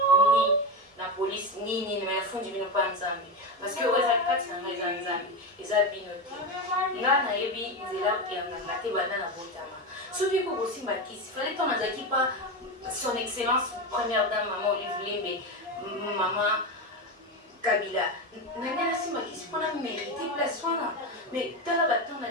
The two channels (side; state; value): both; normal; correlation 0.16